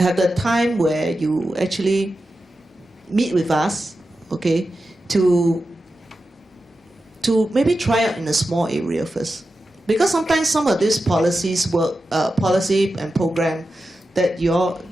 the time where you actually meet with us, okay, to maybe try out in a small area first. Because sometimes some of these policy and program that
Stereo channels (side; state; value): both; normal; correlation 0.91